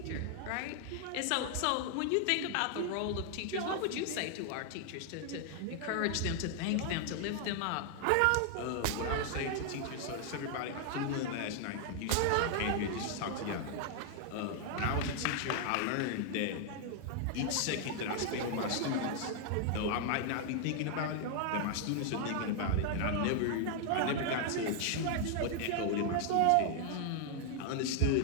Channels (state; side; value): different; both; correlation 0.00